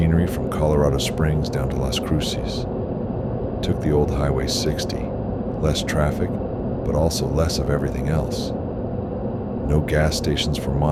from Colorado Springs down to Las Cruces. Took the old Highway 60, less traffic, but also less of everything else. No gas stations for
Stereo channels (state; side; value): identical; both; correlation 1.00